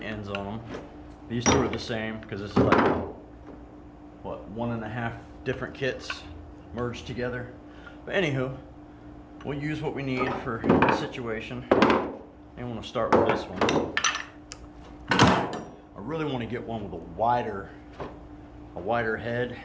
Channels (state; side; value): identical; both; correlation 1.00